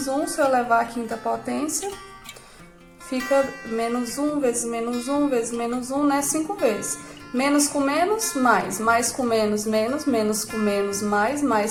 1, se eu elevar a quinta potência... Fica menos 1 vezes menos 1 vezes menos 1, né? 5 vezes. Menos com menos, mais com menos, menos com menos,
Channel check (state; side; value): identical; both; correlation 1.00